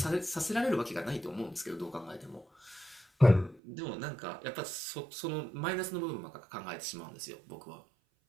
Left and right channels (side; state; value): left; drops out; at 3.6 s